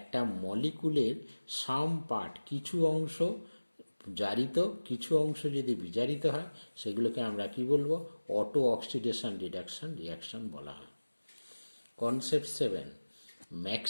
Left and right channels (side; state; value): both; inverted; correlation -1.00